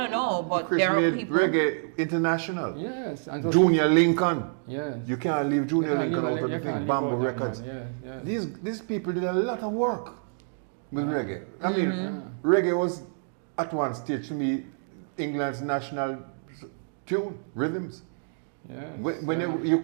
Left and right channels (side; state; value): left; silent; digital silence